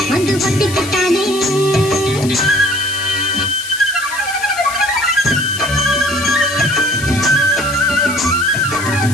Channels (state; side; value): noise; left; hiss, 11 dB below the sound